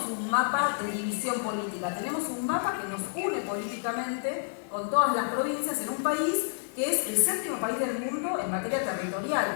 un mapa de división política, tenemos un mapa que nos une políticamente con todas las provincias en un país que es el séptimo país del mundo en materia territorial.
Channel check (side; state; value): right; silent; digital silence